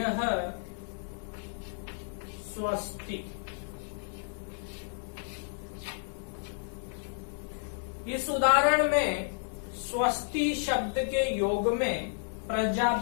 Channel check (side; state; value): right; silent; 57 dB below the other